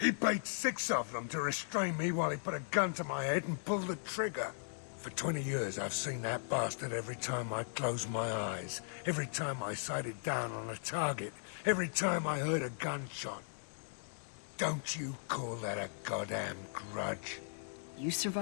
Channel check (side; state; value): right; silent; digital silence